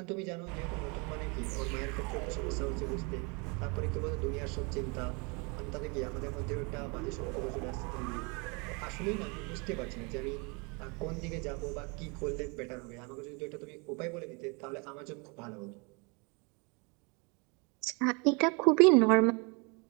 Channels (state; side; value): quieter; left; 31.3 dB